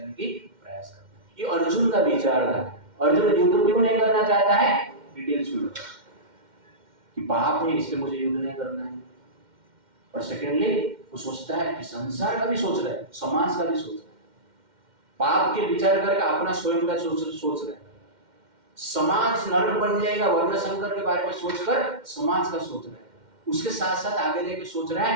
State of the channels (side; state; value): left; late; 2.1 ms